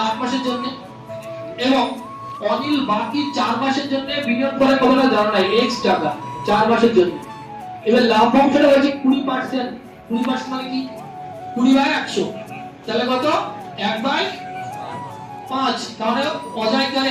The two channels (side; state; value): both; identical; correlation 1.00